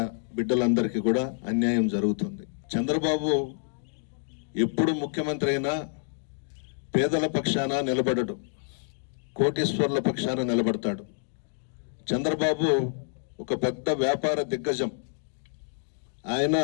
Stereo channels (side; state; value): right; silent; digital silence